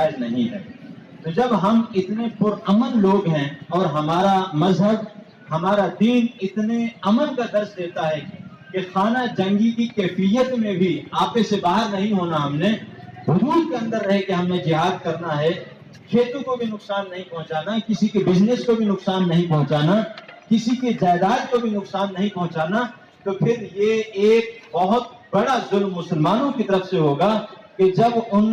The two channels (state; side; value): identical; both; correlation 1.00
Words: نہیں ہے۔ تو جب ہم اتنے پرامن لوگ ہیں اور ہمارا مذہب، ہمارا دین اتنے امن کا درس دیتا ہے کہ خانہ جنگی کی کیفیت میں بھی آپے سے باہر نہیں ہونا، ہم نے حدود کے اندر رہ کے ہم نے جہاد کرنا ہے، کھیتوں کو بھی نقصان نہیں پہنچانا، کسی کے بزنس کو بھی نقصان نہیں پہنچانا، کسی کے جائیداد کو بھی نقصان نہیں پہنچانا، تو پھر یہ ایک بہت بڑا ظلم مسلمانوں کی طرف سے ہوگا کہ جب ان